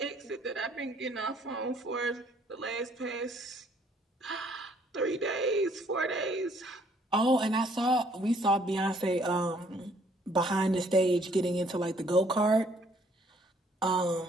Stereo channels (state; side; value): normal; both; correlation 0.63